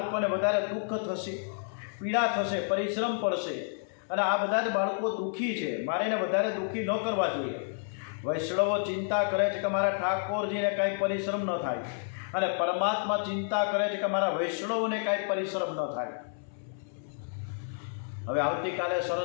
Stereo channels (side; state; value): right; silent; 58 dB below the other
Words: વધારે દુઃખ થશે, પીડા થશે, પરિશ્રમ પડશે અને આ બધા જ બાળકો દુઃખી છે, મારે એને વધારે દુઃખી ન કરવા જોઈએ. વૈષ્ણવો ચિંતા કરે છે કે મારા ઠાકોરજીને કાંઈ પરિશ્રમ ન થાય અને પરમાત્મા ચિંતા કરે છે કે મારા વૈષ્ણવોને કાંઈ પરિશ્રમ ન થાય. હવે આવતીકાલે